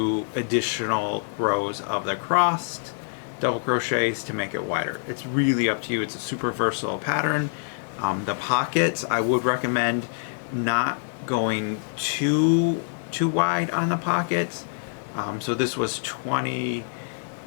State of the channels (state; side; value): silent; right; digital silence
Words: additional rows of the crossed double crochets to make it wider. It's really up to you. It's a super versatile pattern. The pockets, I would recommend not going too wide on the pockets. So this was 20